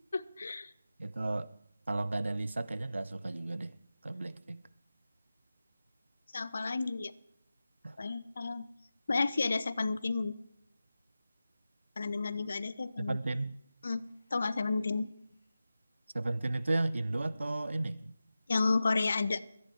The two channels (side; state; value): both; inverted; correlation -0.94